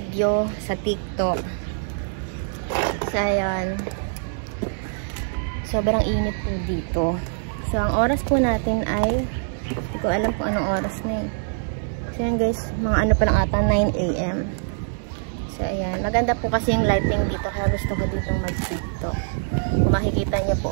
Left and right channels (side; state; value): left; silent; 57 dB below the other